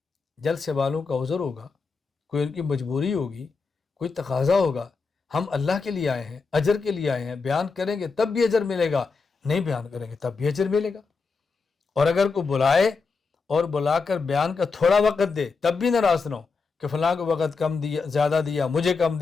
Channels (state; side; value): quieter; right; 4.6 dB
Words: جلسے والوں کا عذر ہوگا، کوئی ان کی مجبوری ہوگی، کوئی تقاضا ہوگا. ہم اللہ کے لیے آئے ہیں، اجر کے لیے آئے ہیں. بیان کریں گے تب بھی اجر ملے گا، نہیں بیان کریں گے تب بھی اجر ملے گا. اور اگر کوئی بلائے اور بلا کر بیان کا تھوڑا وقت دے تب بھی ناراض نہ ہو کہ فلاں کو وقت کم دیا، زیادہ دیا، مجھے کم